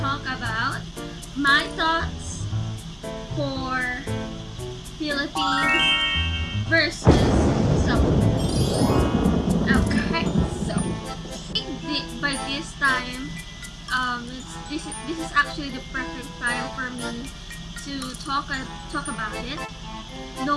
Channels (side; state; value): both; identical; correlation 1.00